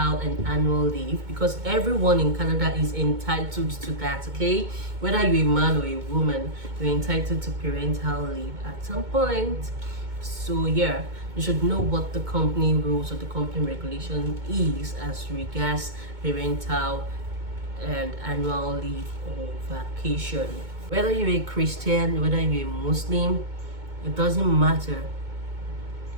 and annual leave, because everyone in Canada is entitled to that, okay? Whether you're a man or a woman, you're entitled to parental leave at some point. So yeah, you should know what the company rules or the company regulation is as regards parental and annual leave or vacation. Whether you're a Christian, whether you're a Muslim, it doesn't matter.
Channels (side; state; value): left; late; 2.2 ms